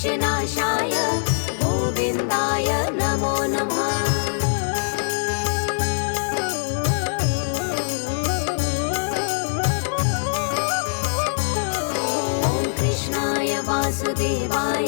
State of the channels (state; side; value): silent; right; digital silence